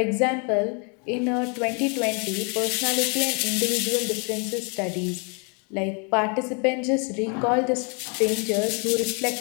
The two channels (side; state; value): right; quieter; 35.8 dB